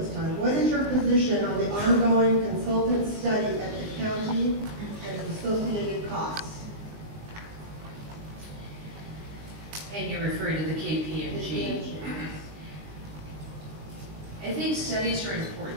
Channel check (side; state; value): left; late; 20 ms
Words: time. What is your position on the ongoing consultant study at the county and the associated costs? And you're referring to the KPMG. I think studies are